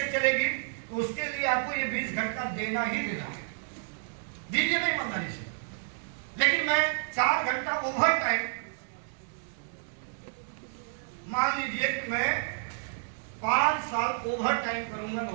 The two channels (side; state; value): left; silent; digital silence